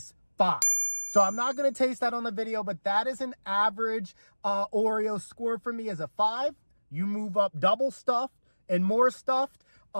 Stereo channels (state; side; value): inverted; both; correlation -1.00